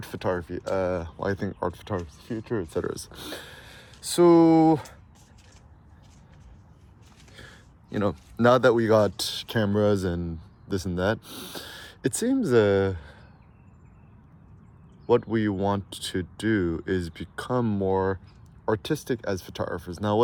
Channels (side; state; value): both; identical; correlation 1.00